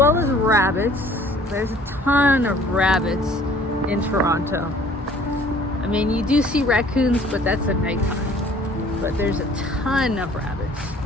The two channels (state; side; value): normal; both; correlation 0.53